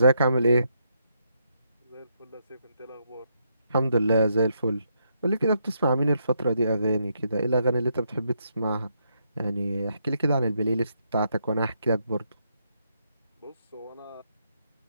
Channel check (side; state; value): both; inverted; correlation -0.78